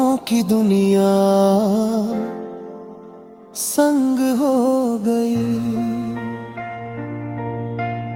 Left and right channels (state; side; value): identical; both; correlation 1.00